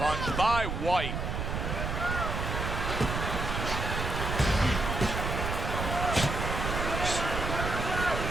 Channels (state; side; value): noise; right; rumble, 3 dB below the sound